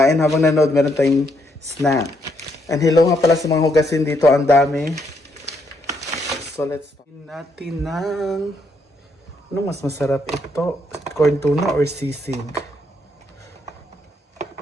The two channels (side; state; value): both; normal; correlation 0.74